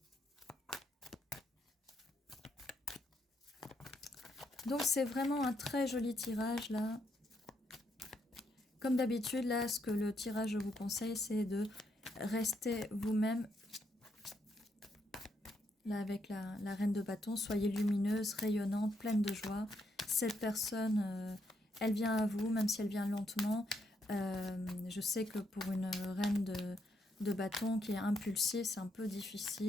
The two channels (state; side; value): normal; both; correlation 0.77